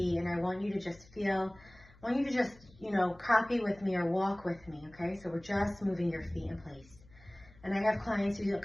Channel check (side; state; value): left; noise; hum, 25 dB below the sound